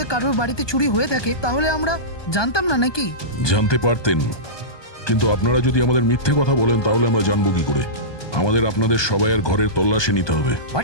কারোর বাড়িতে চুরি হয়ে থাকে তাহলে আমরা জানতাম না নাকি? জানতে পারতেন, কিন্তু আপনারা যদি আমাদের মিথ্যে কথা বলেন তাহলে আমরা জানবো কি করে? আমাদের আপনাদের সবাইয়ের ঘরের তল্লাশি নিতে হবে।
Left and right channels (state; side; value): late; right; 1.2 ms